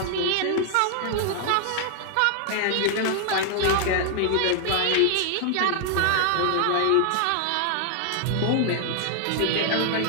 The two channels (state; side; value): different; both; correlation 0.00